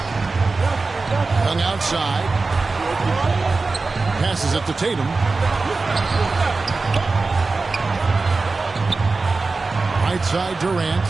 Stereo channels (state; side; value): quieter; left; 3.8 dB